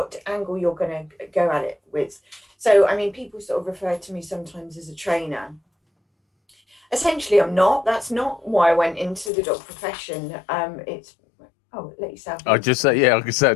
angle you're going to go at it with. So I mean, people sort of refer to me sometimes as a trainer. Essentially, I'm not. That's not why I went into the dog profession. Let yourself. I just say, I could say I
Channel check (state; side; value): drops out; right; at 9.3 s